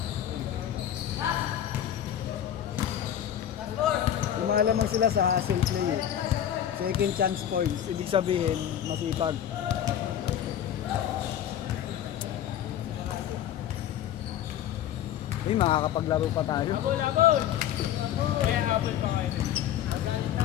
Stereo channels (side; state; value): right; quieter; 10.5 dB